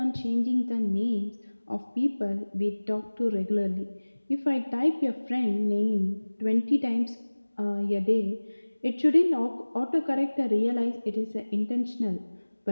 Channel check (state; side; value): inverted; both; correlation -1.00